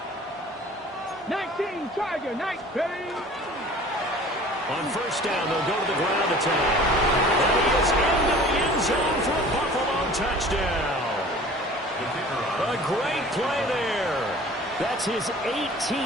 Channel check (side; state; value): both; normal; correlation 0.46